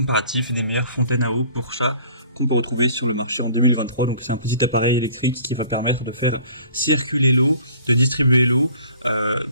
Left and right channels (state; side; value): inverted; both; correlation -0.51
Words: des meilleures fontaines à eau pour chat qu'on peut retrouver sur le marché en 2023. Donc c'est un petit appareil électrique qui va permettre de faire circuler l'eau, de distribuer l'eau